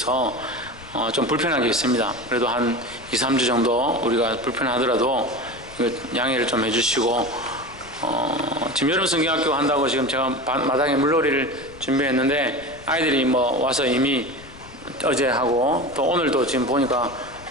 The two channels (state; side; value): noise; left; rumble, 20 dB below the sound